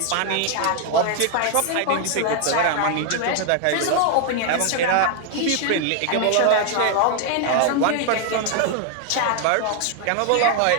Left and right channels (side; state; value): both; different; correlation 0.00